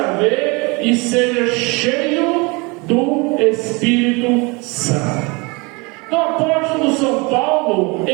ver e seja cheio do Espírito Santo. Então, o apóstolo São Paulo,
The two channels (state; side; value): quieter; left; 27.7 dB